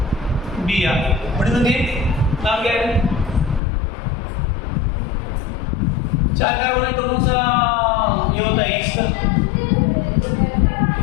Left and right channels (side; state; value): right; drops out; at 3.6 s